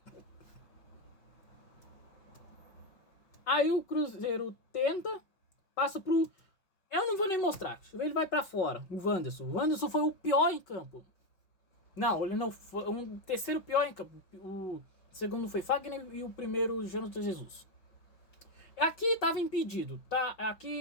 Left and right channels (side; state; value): right; late; 5.5 ms